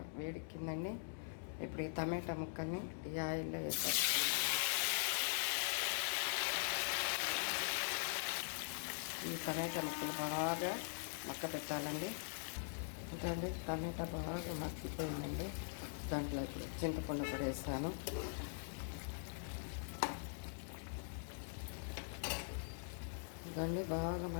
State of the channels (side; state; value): right; silent; digital silence